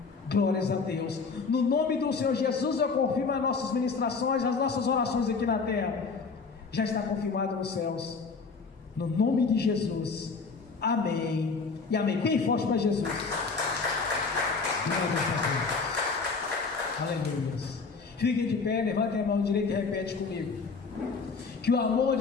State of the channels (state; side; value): quieter; right; 4.6 dB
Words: Glórias a Deus. No nome do Senhor Jesus, eu confirmo as nossas ministrações, as nossas orações aqui na terra. Já está confirmado nos céus. No nome de Jesus. Amém. E amém. Bem forte para Jesus. Glórias a Deus. Aleluia. Fiquem de pé, levantem a mão direita e repete comigo. Que o amor